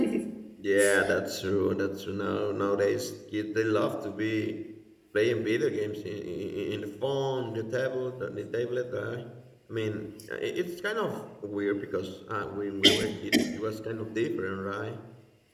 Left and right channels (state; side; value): identical; both; correlation 1.00